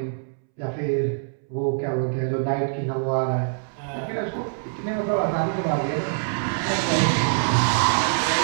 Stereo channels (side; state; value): left; silent; 62 dB below the other